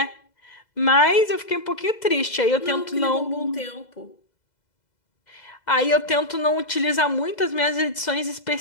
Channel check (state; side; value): late; right; 2.0 ms